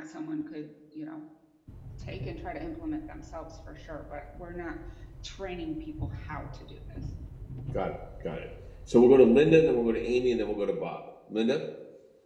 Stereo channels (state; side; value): identical; both; correlation 1.00